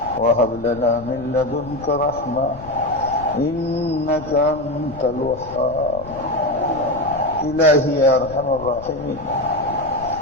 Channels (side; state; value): left; noise; rumble, 16 dB below the sound